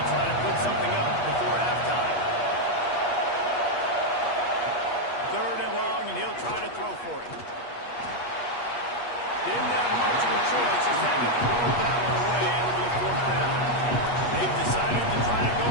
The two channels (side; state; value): right; late; 8.3 ms